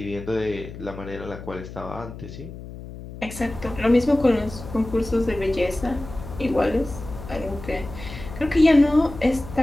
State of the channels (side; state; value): left; noise; hum, 13 dB below the sound